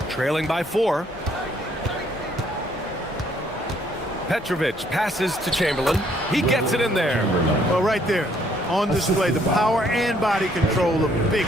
trailing by 4. Petrovic passes to Chamberlain. He gets it in there. Well, right there, on display, the power and body control of big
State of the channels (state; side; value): normal; both; correlation 0.66